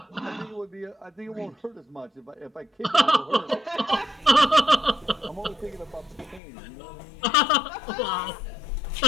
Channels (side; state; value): right; drops out; at 6.4 s